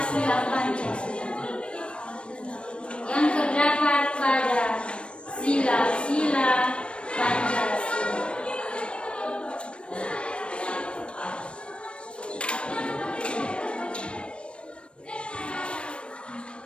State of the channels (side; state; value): right; late; 0.058 ms